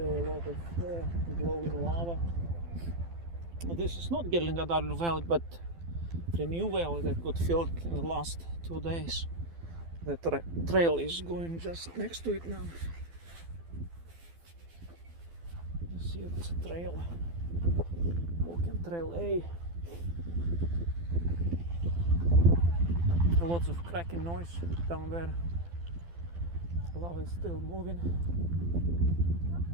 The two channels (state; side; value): late; left; 12 ms